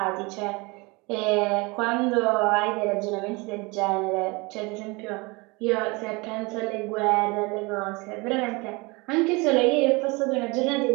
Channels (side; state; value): left; quieter; 26.3 dB